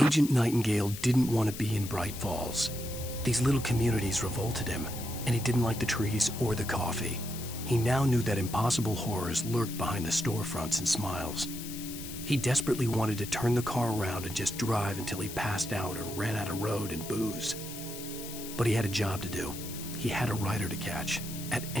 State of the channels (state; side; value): noise; left; hiss, 11 dB below the sound